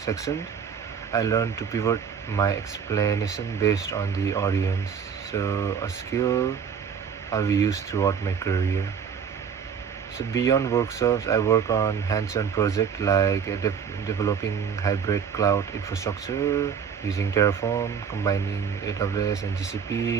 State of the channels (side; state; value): left; quieter; 7.2 dB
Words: section, I learned to pivot my explanation based on the audience. So a skill I'll be used throughout my career. So beyond workshops, I work on hands-on projects like developing hybrid cloud infrastructure using Terraform, combining AWS and